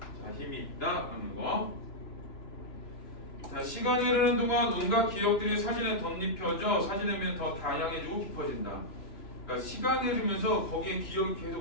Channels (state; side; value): late; right; 3.0 ms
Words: 힘이 있다는 거. 자, 시간이 흐르는 동안 온갖 기억들이 사진에 덧입혀져 사진의 면이 더 다양해지고 깊어진다. 그러니까 시간이 흐르면서 거기에 기억이